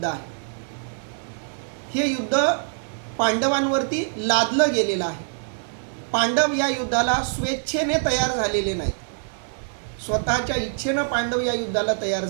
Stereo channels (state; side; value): silent; left; 55 dB below the other